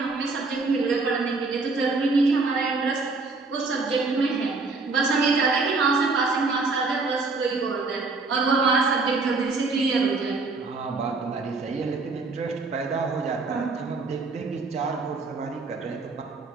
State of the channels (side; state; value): left; quieter; 3.9 dB